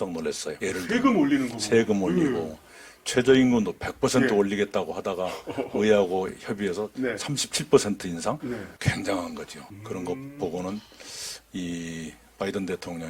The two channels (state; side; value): identical; both; correlation 1.00